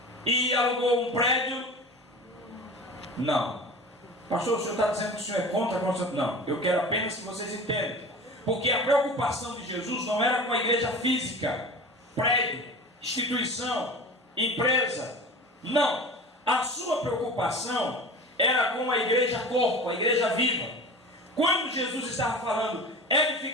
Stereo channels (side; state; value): both; normal; correlation 0.35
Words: e alugou um prédio? Não. Pastor, o senhor está dizendo que o senhor é contra a construção? Não, eu quero apenas que vocês entendam. Porque a preocupação de Jesus não era com a igreja física, prédio, instituição, empresa. Não. A sua preocupação era com a igreja corpo, a igreja viva. Quando Jesus estava falando,